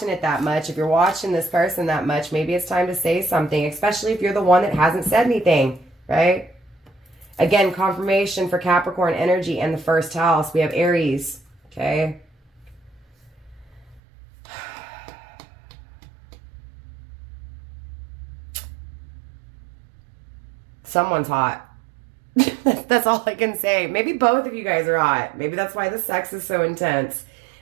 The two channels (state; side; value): drops out; left; at 14.0 s